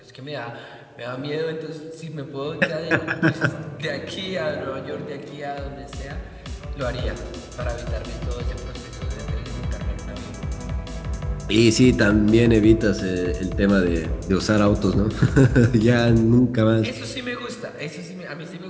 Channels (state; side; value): identical; both; correlation 1.00